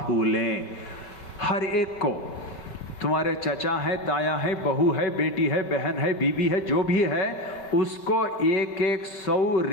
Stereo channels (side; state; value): right; late; 5.3 ms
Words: हर एक को, तुम्हारे चचा हैं, ताया हैं, बहू है, बेटी है, बहन है, बीबी है, जो भी है, उसको एक 100